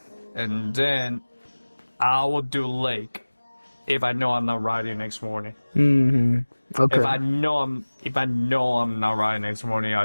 And then I will do leg if I know I'm not riding next morning. Mm-hmm. Okay. If I know I'm not riding next morning,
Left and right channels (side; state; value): both; inverted; correlation -1.00